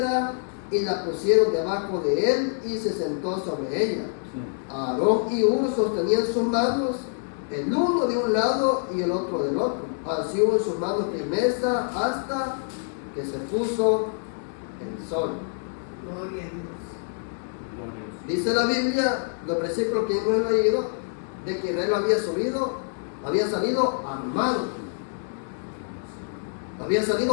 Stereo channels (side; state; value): right; silent; digital silence